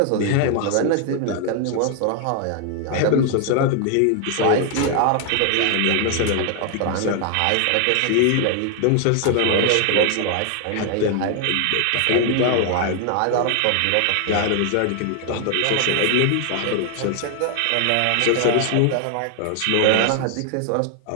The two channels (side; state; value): both; different; correlation 0.00